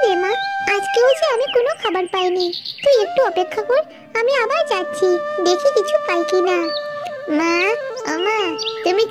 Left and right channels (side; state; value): both; identical; correlation 1.00